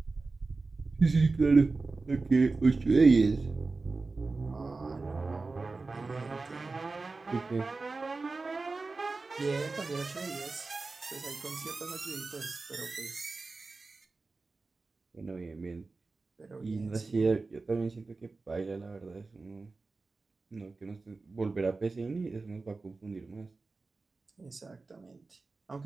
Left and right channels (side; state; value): left; quieter; 3.8 dB